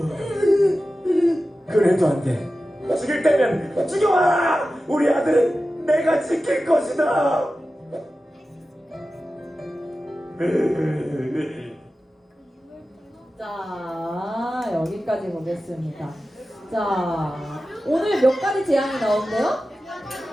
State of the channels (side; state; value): both; normal; correlation 0.94